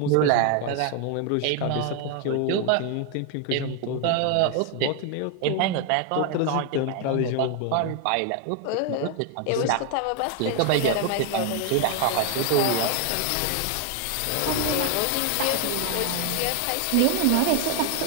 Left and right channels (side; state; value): both; different; correlation 0.01